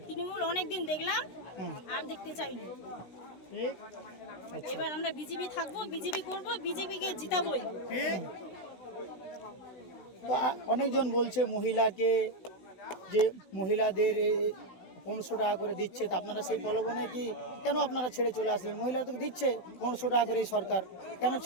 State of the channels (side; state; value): right; late; 16 ms